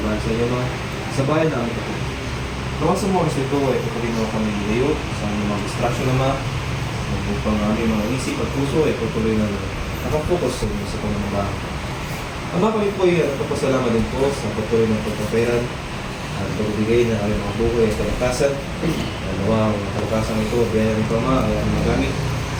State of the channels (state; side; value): identical; both; correlation 1.00